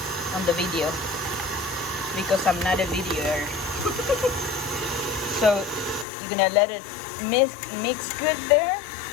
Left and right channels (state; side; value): drops out; right; at 6.1 s